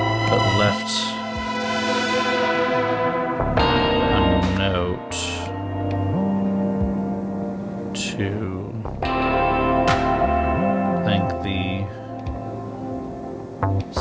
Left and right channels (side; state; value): both; identical; correlation 1.00